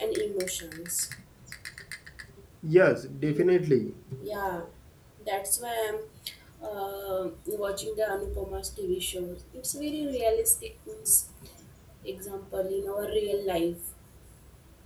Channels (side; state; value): both; identical; correlation 1.00